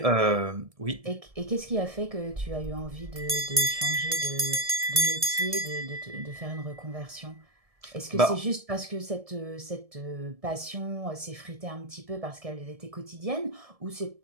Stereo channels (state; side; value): late; left; 1.7 ms